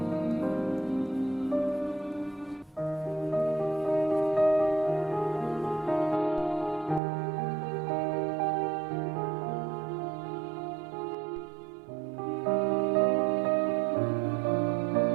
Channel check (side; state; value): left; drops out; at 7.0 s